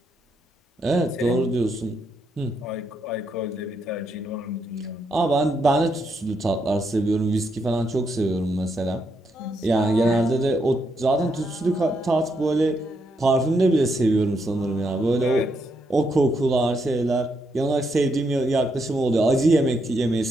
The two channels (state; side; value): normal; both; correlation 0.79